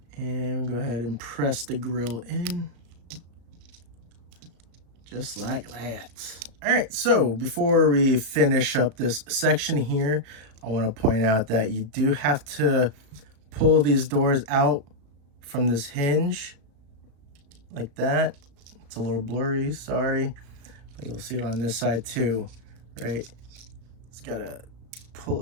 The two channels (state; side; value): late; left; 35 ms